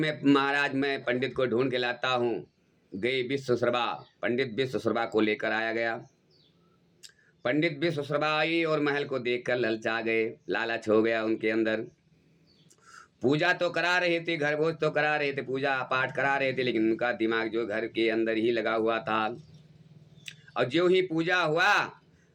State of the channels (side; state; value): both; identical; correlation 1.00